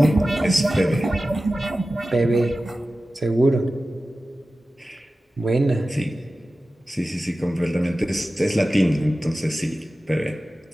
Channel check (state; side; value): normal; both; correlation 0.95